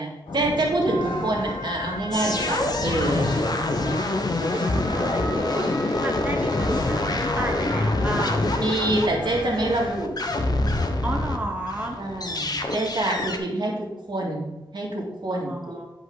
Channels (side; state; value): both; normal; correlation 0.68